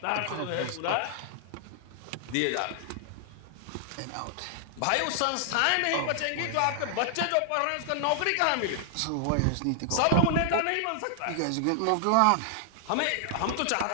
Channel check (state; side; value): different; both; correlation 0.00